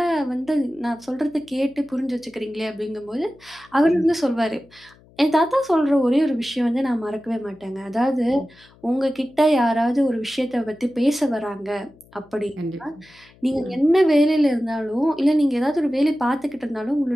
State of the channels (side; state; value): left; noise; hum, 28 dB below the sound